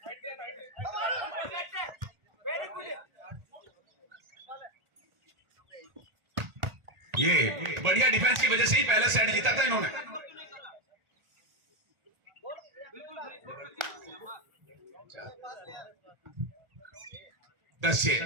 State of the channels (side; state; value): left; late; 1.8 ms